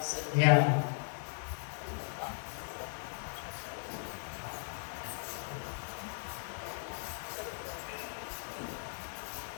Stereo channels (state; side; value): silent; right; digital silence